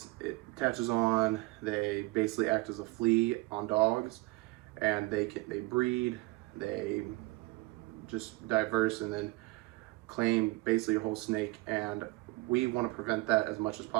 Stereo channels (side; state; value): left; quieter; 22.6 dB